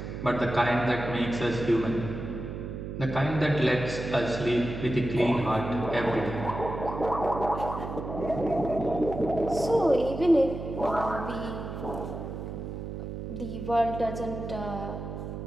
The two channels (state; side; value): noise; right; hum, 7 dB below the sound